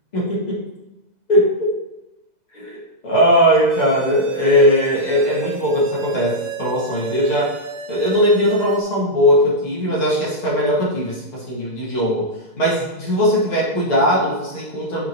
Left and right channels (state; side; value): late; left; 2.0 ms